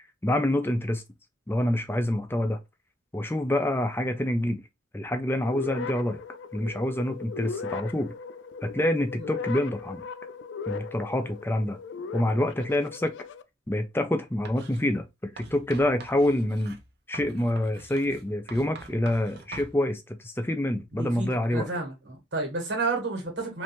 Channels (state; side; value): normal; both; correlation 0.77